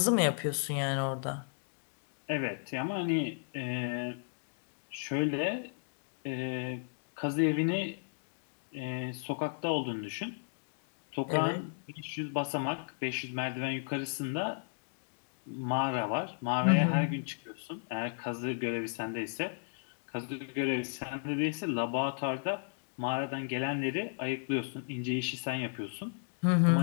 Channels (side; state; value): right; silent; digital silence